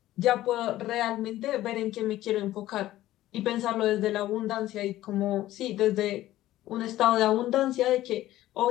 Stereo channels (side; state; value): right; quieter; 14.9 dB